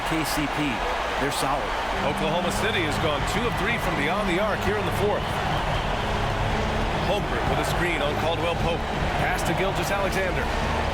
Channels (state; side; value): identical; both; correlation 1.00